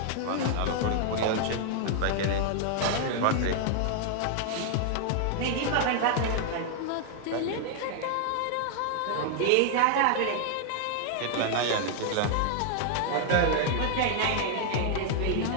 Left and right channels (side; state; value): both; different; correlation 0.00